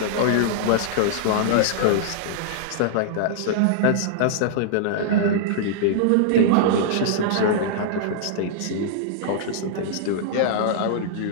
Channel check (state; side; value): different; both; correlation -0.02